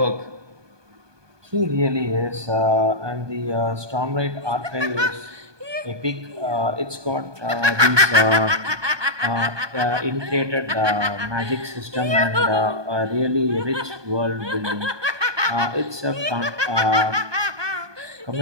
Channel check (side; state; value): left; late; 1.2 ms